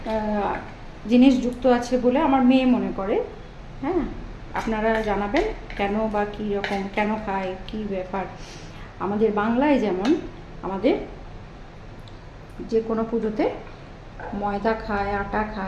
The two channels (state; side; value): identical; both; correlation 1.00